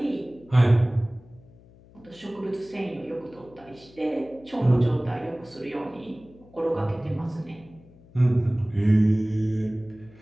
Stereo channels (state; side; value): noise; left; hum, 25 dB below the sound